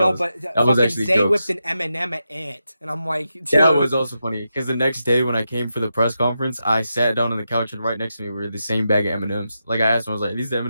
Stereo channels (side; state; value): both; inverted; correlation -0.88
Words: was actually Zay whipped an M&M at Ant, and I'm like, dude. That was also funny because the next day when I came for the press conference, I sat down on the couch and right next to me were the same bag of M&Ms. Like I asked him, I was like, "These